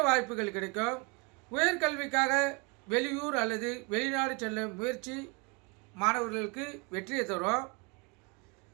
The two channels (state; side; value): quieter; left; 29.6 dB